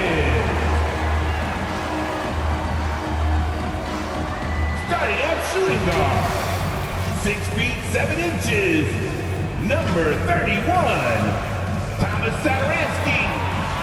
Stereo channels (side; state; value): both; identical; correlation 1.00